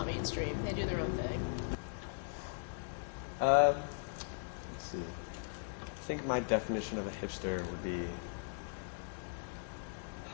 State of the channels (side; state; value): right; silent; digital silence